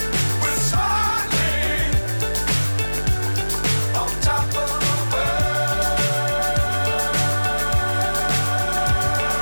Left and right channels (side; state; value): both; inverted; correlation -1.00